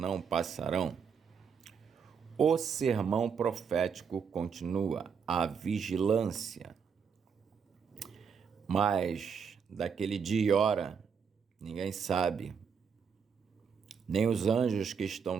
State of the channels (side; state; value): left; quieter; 6.5 dB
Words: passarão. O sermão profético continua: a vigilância. Mas daquele dia e hora ninguém sabe, nem os anjos que estão